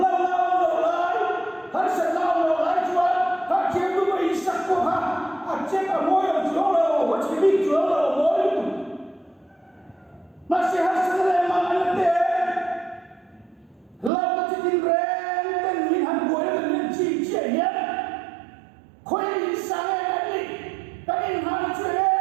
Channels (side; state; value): left; drops out; at 14.1 s